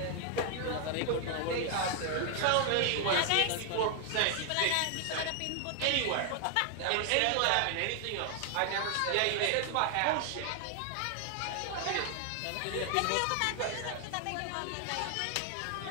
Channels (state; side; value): different; both; correlation 0.01